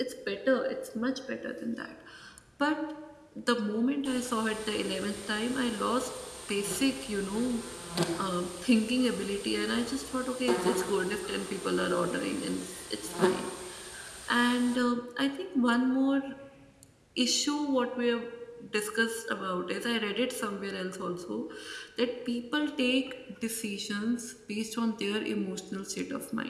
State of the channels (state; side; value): identical; both; correlation 1.00